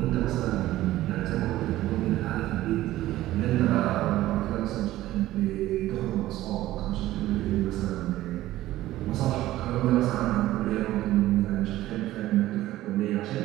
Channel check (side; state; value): left; quieter; 15.4 dB